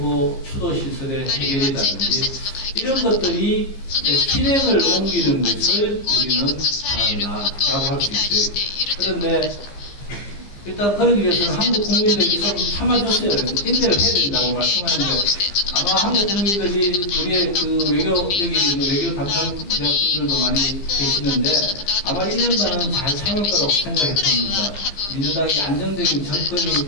추도 시설의 해결이라든지 이런 것들이 실행을 옮기는 것을 우리는 바란다라고 할 수 있어요. 그런데 일단 그러기 위해서는 한국 국민들이 좀 참아줬어요. 인내를 해야 된다고 말씀하는데 아마 한국 국민들이 우리의 여기 있는 외교 담당자분들도 많이 계시는데 아마 1년간은 잘 참을 거라고 생각이 듭니다. 민주당이 안정적인 정권이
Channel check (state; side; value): late; right; 15 ms